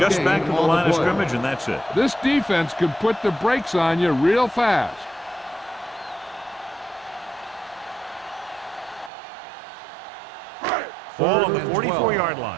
back to the line of scrimmage, and that's it. This defense can put the brakes on you real fast. Ball on the 44-yard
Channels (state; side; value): drops out; left; at 9.1 s